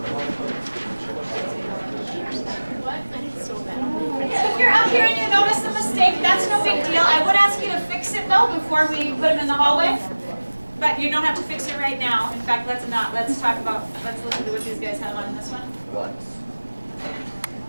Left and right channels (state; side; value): inverted; both; correlation -1.00